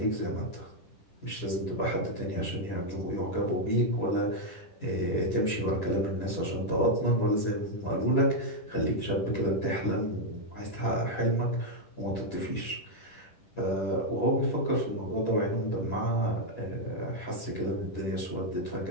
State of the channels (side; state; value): right; late; 10 ms